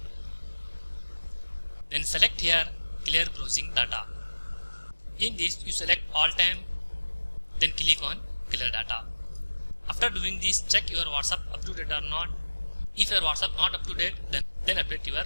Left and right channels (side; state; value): both; inverted; correlation -1.00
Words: Then select here clear browsing data. In this you select all time, then click on clear data. After doing this, check your WhatsApp up to date or not. If your WhatsApp not up to date, then update your